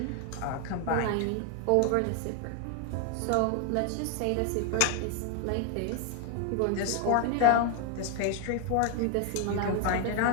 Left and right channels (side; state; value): both; different; correlation 0.00